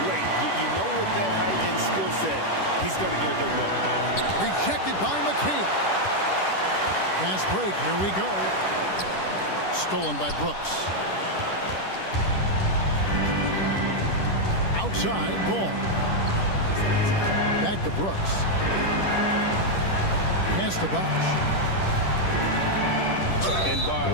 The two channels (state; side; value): late; right; 10 ms